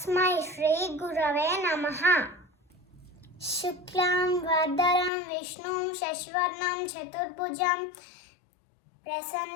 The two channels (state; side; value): drops out; right; at 5.1 s